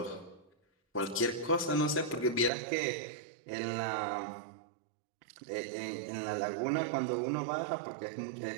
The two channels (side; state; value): left; drops out; at 2.5 s